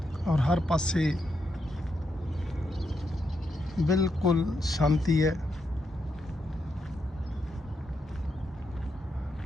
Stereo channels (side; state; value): both; normal; correlation 0.82